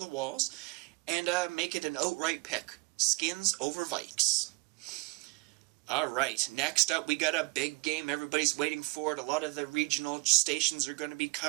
walls and make it an outright pick. Skins over Vikes. Alright, next up we got a big game everybody's waiting for it. A lot of the regional stations are going to be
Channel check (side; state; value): left; quieter; 26.7 dB